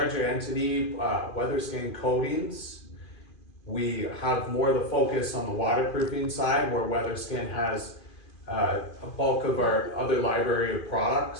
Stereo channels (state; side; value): late; right; 2.5 ms